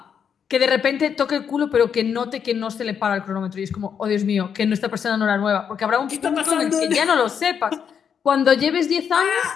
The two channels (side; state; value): right; quieter; 7.5 dB